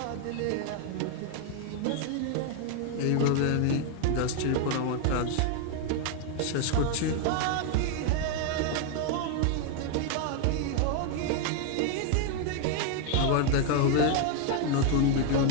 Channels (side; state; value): both; different; correlation 0.00